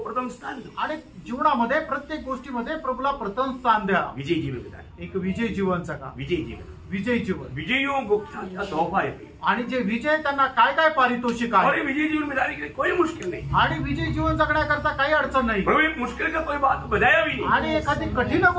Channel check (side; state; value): both; identical; correlation 1.00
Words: स्थान दो, आणि जीवनामध्ये प्रत्येक गोष्टीमध्ये प्रभूला प्रथम स्थान द्या। विजय जीवन बिताए, एक विजय जीवन जगा, विजय जीवन, विजय जीवन। विजयों को क्या तोहफा है, आणि जे विजय त्यांना काय काय पारितोषिक और आहे, ये विजय जीवन बिताने के लिए कोई मुश्किल नहीं। आणि विजय जीवन जगण्याकरता काही अडचण नाही, प्रभु एक मुश्किल का कोई बात बताया भी नहीं, आणि एखादी कठीण